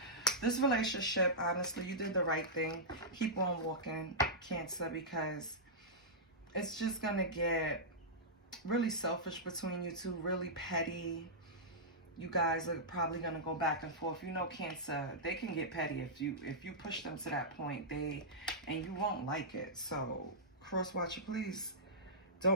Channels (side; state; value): both; normal; correlation -0.13